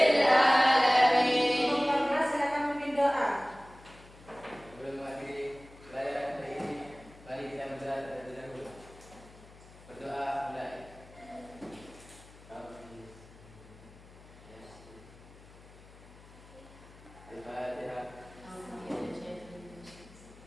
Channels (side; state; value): left; noise; hum, 21 dB below the sound